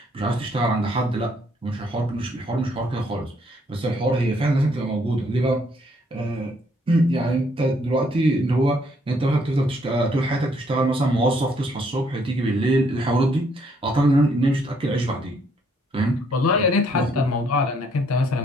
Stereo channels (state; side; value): normal; both; correlation 0.68